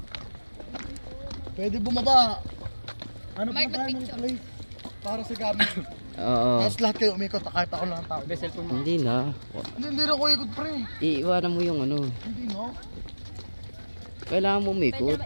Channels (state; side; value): inverted; both; correlation -1.00